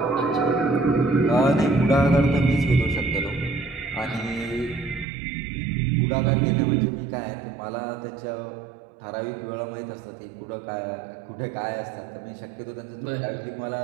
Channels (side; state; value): left; drops out; at 5.1 s